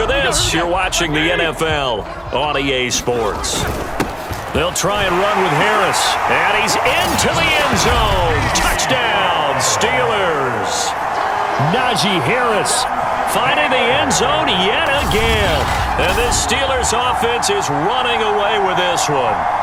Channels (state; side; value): identical; both; correlation 1.00